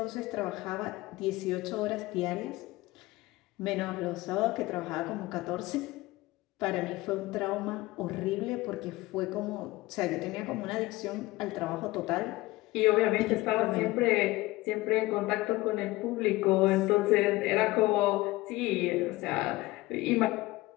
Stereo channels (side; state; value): right; quieter; 19.7 dB